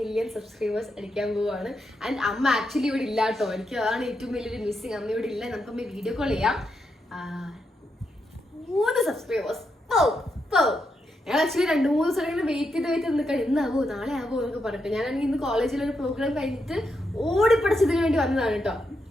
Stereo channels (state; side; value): normal; both; correlation 0.83